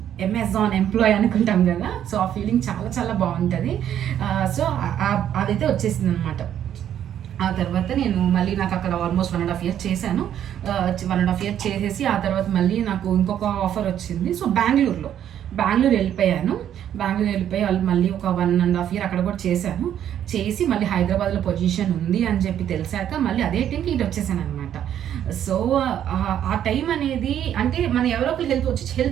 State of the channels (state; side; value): quieter; left; 10.2 dB